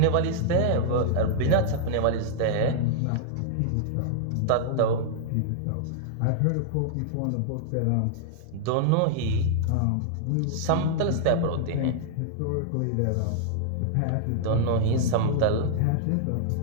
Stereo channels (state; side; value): different; both; correlation -0.01